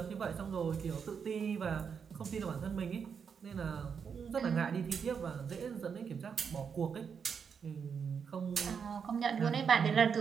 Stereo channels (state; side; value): quieter; left; 6.6 dB